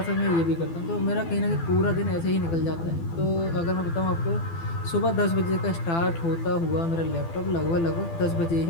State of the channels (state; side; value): late; right; 12 ms